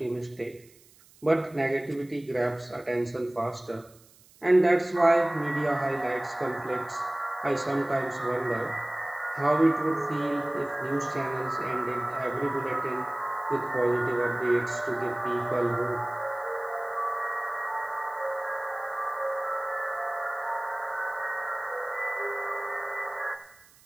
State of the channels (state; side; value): noise; right; hiss, 27 dB below the sound